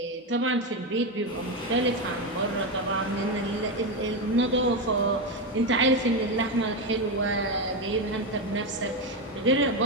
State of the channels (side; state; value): both; normal; correlation 0.11